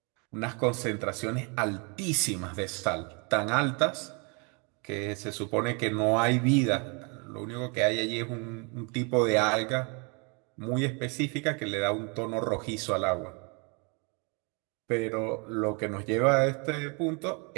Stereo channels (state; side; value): quieter; left; 33.2 dB